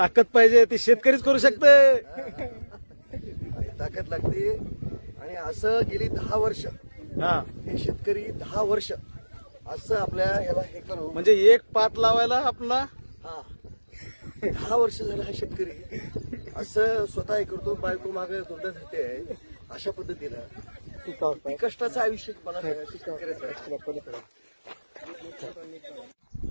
पाहिजे, ती शेतकरीच करू शकते. ताकद लागते. आणि असं गेली 10 वर्ष हे शेतकरी 10 वर्ष असं आपल्या ह्याला हे करू, म्हणजे एक पात लावायला आपला 10 वर्ष झालं हा शेतकरी असं स्वतः हे करतो. बायको मागे धोंडा धरते आहे अशा पद्धतीनं कष्टाचं आयुष्य मला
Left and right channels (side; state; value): both; inverted; correlation -1.00